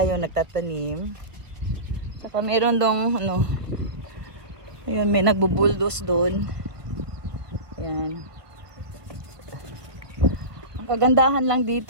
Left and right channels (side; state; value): left; late; 1.4 ms